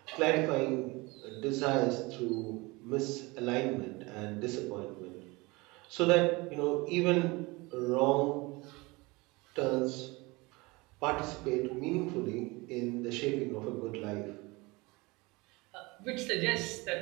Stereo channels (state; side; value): quieter; left; 24.2 dB